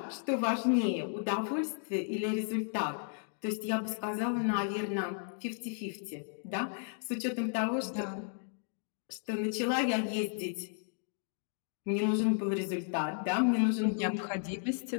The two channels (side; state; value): right; silent; 55 dB below the other